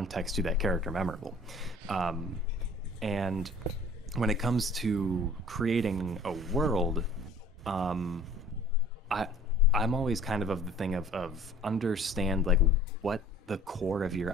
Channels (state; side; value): normal; both; correlation 0.49